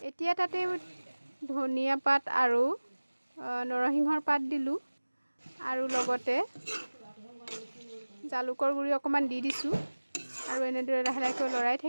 এতিয়া তাতে ধনিয়া পাত আৰু নৰসিংহৰ পাত দিলোঁ আৰু লগতে জালুকৰ গুড়ি অকণমান দি দিছোঁ আৰু এনেদৰে লাহে লাহেকৈ লৰাই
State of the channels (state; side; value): inverted; both; correlation -1.00